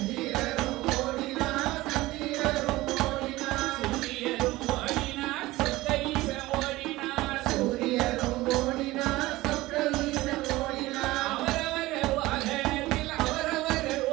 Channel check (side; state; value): left; quieter; 18.7 dB